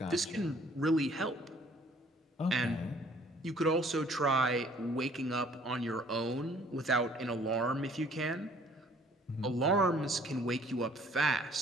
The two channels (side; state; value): both; normal; correlation 0.57